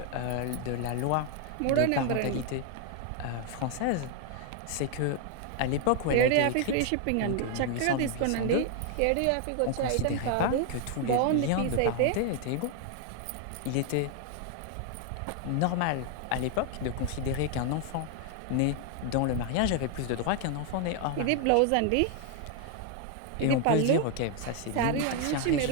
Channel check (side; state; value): both; different; correlation 0.00